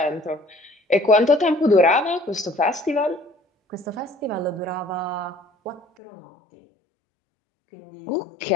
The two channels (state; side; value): drops out; right; at 5.9 s